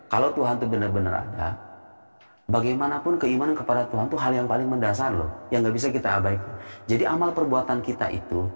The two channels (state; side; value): inverted; both; correlation -1.00